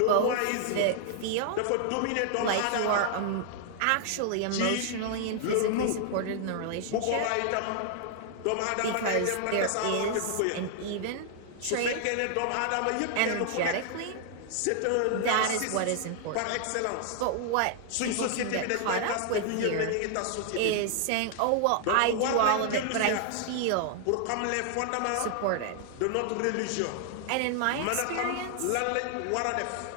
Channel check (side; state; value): both; different; correlation -0.01